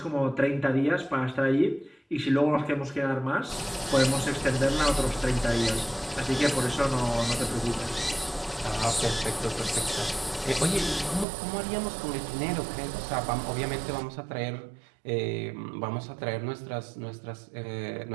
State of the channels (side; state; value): left; drops out; at 11.2 s